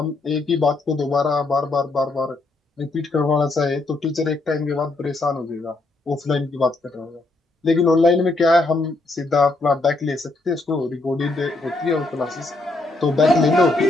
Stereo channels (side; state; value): right; quieter; 3.1 dB